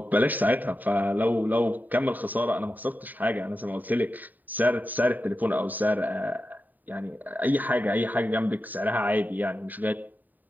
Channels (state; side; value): late; left; 0.086 ms